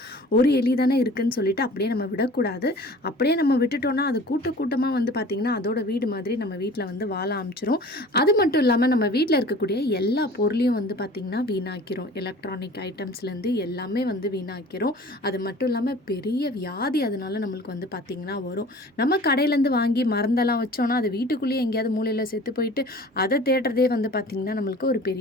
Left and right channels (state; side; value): normal; both; correlation 0.44